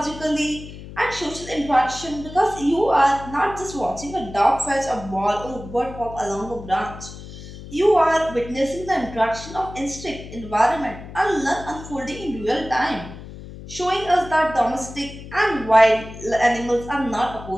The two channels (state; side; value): noise; left; hum, 14 dB below the sound